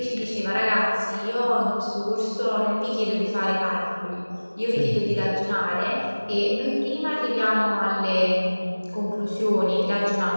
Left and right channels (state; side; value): inverted; both; correlation -1.00